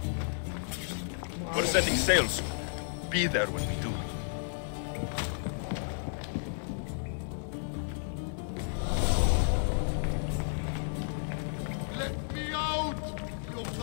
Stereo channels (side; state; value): right; silent; digital silence